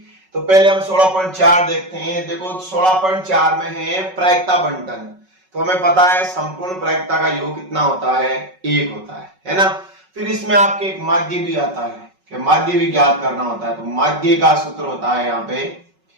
तो पहले हम 16.4 देखते हैं। देखो 16.4 में है प्रायिकता बंटन। तो हमें पता है संपूर्ण प्रायिकता का योग कितना होता है, 1 होता है ना। फिर इसमें आपके एक माध्य भी आता है कि माध्य भी ज्ञात करना होता है। तो माध्य का सूत्र होता है यहाँ पे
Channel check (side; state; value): left; late; 5.4 ms